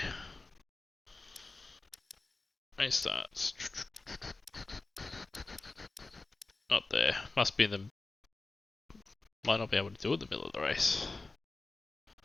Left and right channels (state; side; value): quieter; right; 3.5 dB